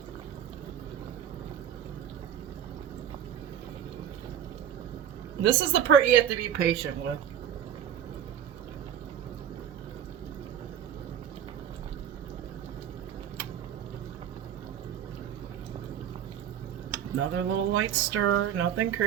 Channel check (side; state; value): left; quieter; 9.7 dB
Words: This is the part you have to be patient with. Another little light stir, nothing